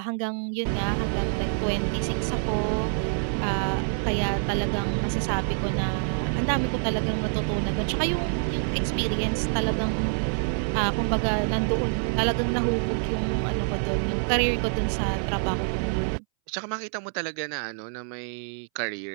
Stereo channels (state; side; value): silent; left; 61 dB below the other